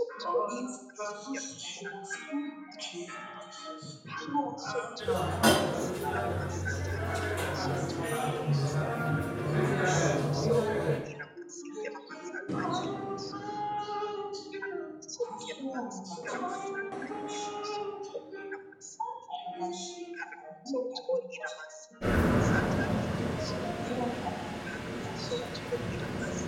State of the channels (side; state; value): both; identical; correlation 1.00